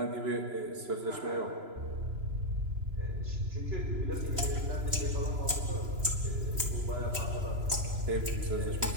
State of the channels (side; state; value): left; late; 3.0 ms